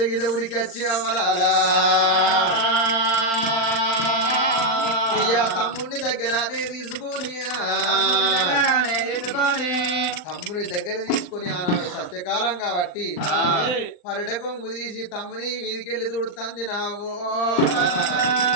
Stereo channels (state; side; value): late; right; 39 ms